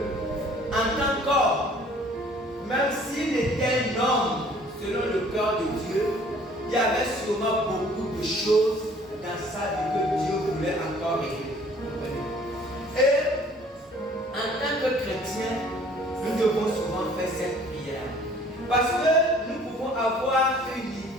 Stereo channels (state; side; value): normal; both; correlation 0.54